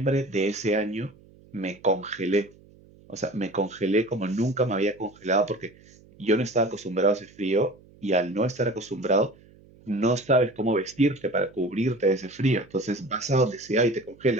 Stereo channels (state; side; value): noise; right; hum, 26 dB below the sound